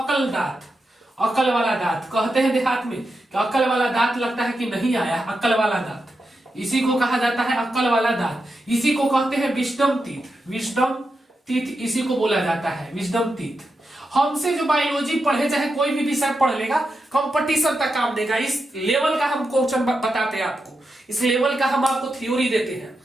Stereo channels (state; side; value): normal; both; correlation 0.87